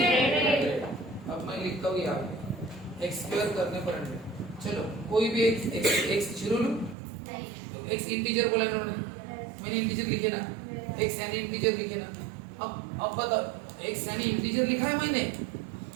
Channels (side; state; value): left; drops out; at 7.0 s